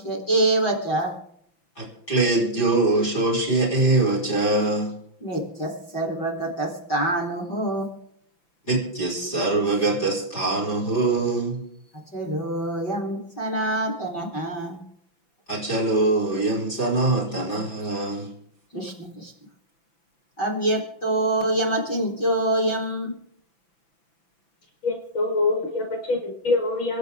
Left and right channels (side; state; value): right; late; 5.9 ms